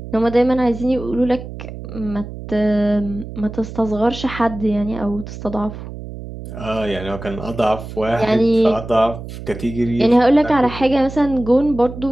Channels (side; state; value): right; noise; hum, 11 dB below the sound